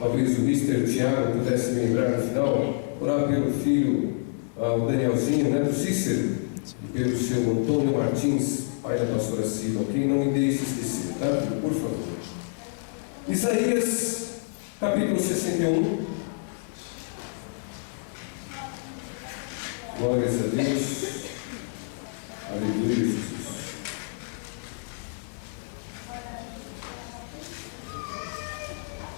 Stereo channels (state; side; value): silent; right; digital silence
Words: o Mr. Tiago pudesse me lembrar no final, orar pelo filho, o Danielzinho, né, do Cícero, e pelo seu Antônio Martins, pai da pastora Silva, ok? Não me deixe esquecer, tá? Por favor. Isaías, capítulo 61. Glórias a Deus. Aleluia, Jesus.